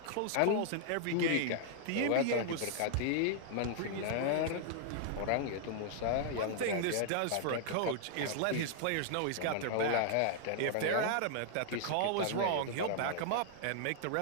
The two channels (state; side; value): different; both; correlation -0.01